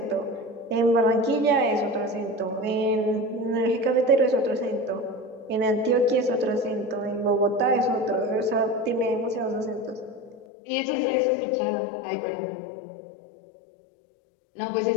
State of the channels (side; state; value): right; drops out; at 10.5 s